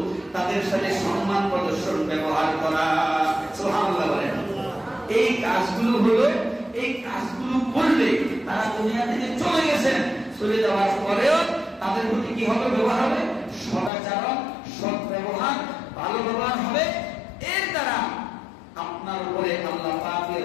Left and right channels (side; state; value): right; drops out; at 13.9 s